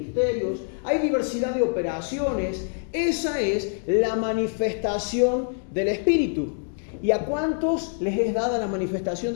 hay diversidad de operaciones. Esa es la manifestación del Espíritu. ¿Y a cuántos les es dada la manifestación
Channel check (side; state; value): right; silent; 62 dB below the other